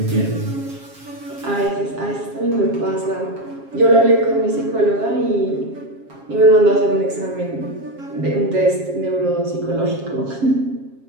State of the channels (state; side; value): late; left; 7.4 ms